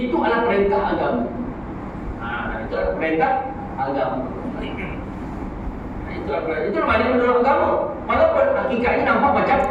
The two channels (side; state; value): both; identical; correlation 1.00